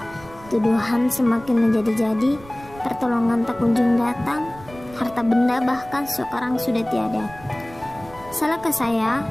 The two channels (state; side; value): noise; right; rumble, 20 dB below the sound